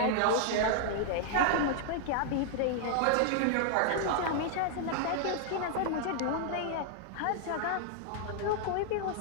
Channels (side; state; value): both; different; correlation -0.01